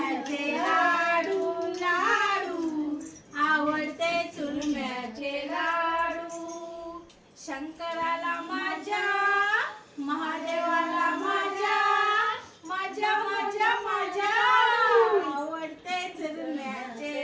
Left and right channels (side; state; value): both; identical; correlation 1.00